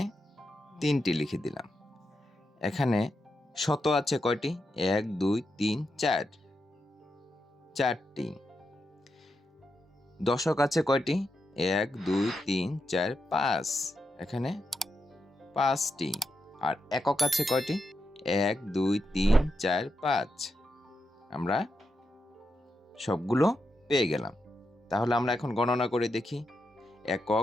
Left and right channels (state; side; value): normal; both; correlation 0.86